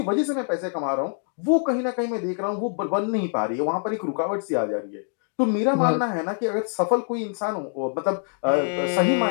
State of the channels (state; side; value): silent; right; 62 dB below the other